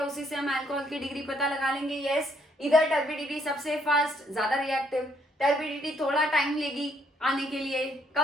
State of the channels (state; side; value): normal; both; correlation 0.70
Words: उसी से हम अल्कोहल की डिग्री पता लगा लेंगे? यस, इधर टर्बिडिटी सबसे फास्ट, ज्यादा रिएक्टिव, टर्बिडिटी थोड़ा टाइम लेगी आने के लिए,